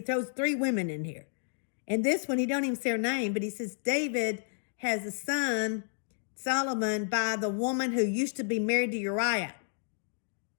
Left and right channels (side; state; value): right; silent; digital silence